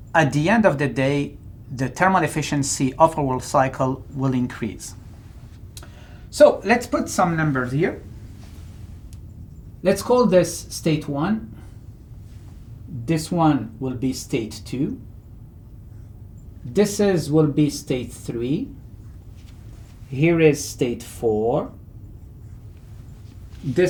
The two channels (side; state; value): both; identical; correlation 1.00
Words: at the end of the day, the thermal efficiency of our cycle will increase. So let's put some numbers here. Let's call this state 1. This one will be state 2. This will be state 3. Here is state 4.